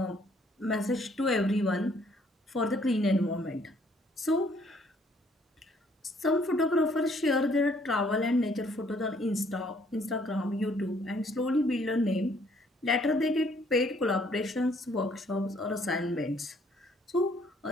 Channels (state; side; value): normal; both; correlation 0.64